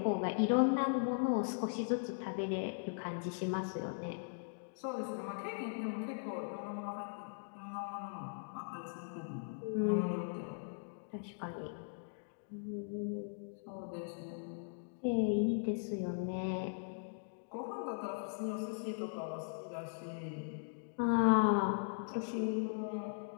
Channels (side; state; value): right; silent; digital silence